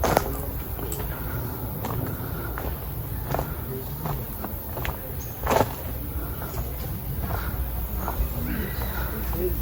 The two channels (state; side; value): identical; both; correlation 1.00